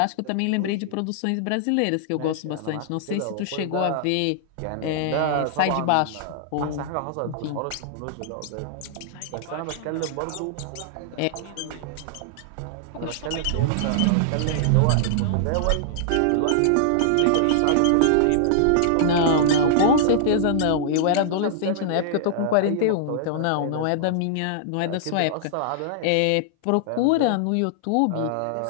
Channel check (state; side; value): different; both; correlation -0.01